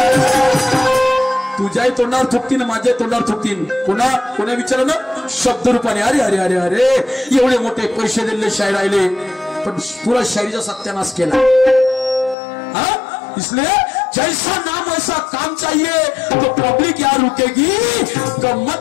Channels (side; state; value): right; drops out; at 12.4 s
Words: तुझ्याही तोंडावर थुकतीन, माझ्या तोंडावर थुकतीन. कोणा विचारलं शब्द रूपाने, अरे अरे अरे अरे एवढे मोठे पैसे दिले शाहीर आले, पण पुरा शायरीचा सत्यानाश केला. इसलिए जैसा नाम वैसा काम चाहिए, तो पब्लिक यहाँ रुकेगी,